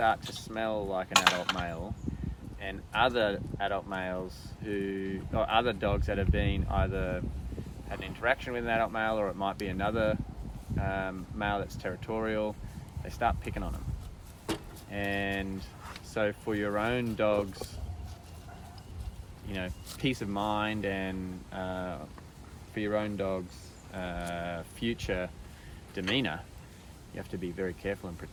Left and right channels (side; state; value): both; identical; correlation 1.00